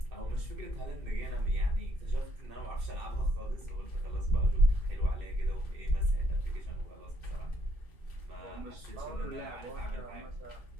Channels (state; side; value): late; left; 2.6 ms